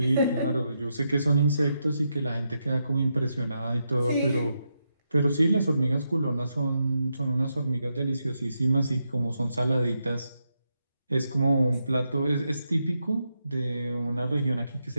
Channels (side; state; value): both; inverted; correlation -0.84